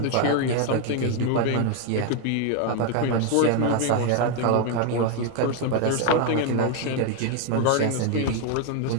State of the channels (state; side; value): different; both; correlation 0.01